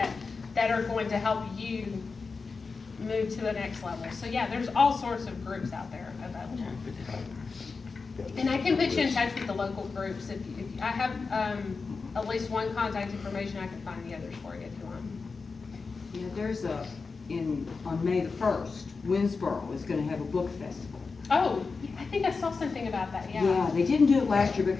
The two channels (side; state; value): right; quieter; 4.5 dB